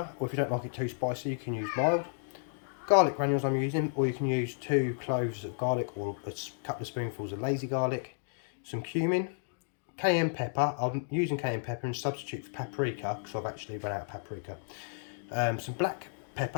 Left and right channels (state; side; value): silent; right; digital silence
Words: or if you don't like it too spicy, you can use mild. Garlic granules I'm using, or you can use 2 cloves of garlic or a couple of spoonfuls of lazy garlic, some cumin, cayenne pepper. I'm using cayenne pepper and substitute for paprika because I've actually run out of paprika. Some black